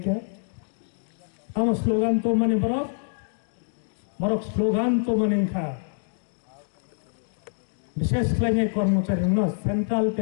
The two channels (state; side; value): silent; right; digital silence